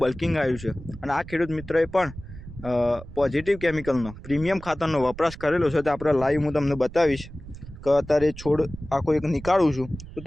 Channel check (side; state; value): right; noise; rumble, 14 dB below the sound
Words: બલ્કિંગ આવ્યું છે અને આ ખેડૂત મિત્રોએ પણ પોઝિટિવ કેમિકલનો પ્રીમિયમ ખાતરનો વપરાશ કરેલો છે. તો આપણે લાઈવ હું તમને બતાવીશ કે અત્યારે છોડ આખો એક નીકાળું છું તો